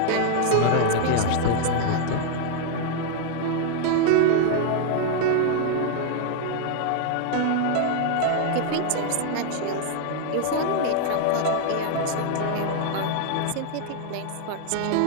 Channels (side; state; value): both; different; correlation 0.00